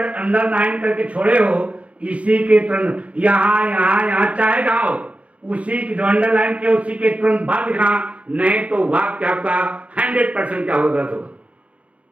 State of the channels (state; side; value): late; left; 0.064 ms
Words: अंडरलाइन करके छोड़े हो इसी के तुरंत यहां यहां यहां, चाहे जहां हो, उसी की जो अंडरलाइन किया उसी के तुरंत बाद लिखना, नहीं तो वाक्य आपका 100% क्या होगा? गलत होगा।